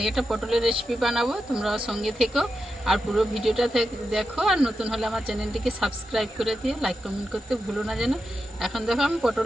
पटलेर रेसिपि बानाबो, तोमरा संगे থেকো और पुरो भिडियोटा देखो और नतून होले आमार चैनेलटिके सबस्क्राइब करे दिओ, लाइक कमेंट करते भुलो ना जेन। एखन देखो आमी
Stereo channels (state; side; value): normal; both; correlation 0.88